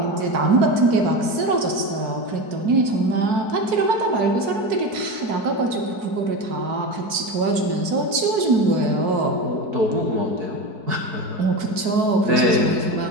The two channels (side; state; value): left; late; 4.6 ms